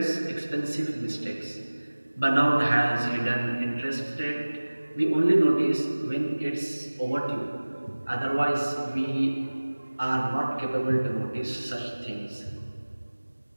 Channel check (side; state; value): both; inverted; correlation -1.00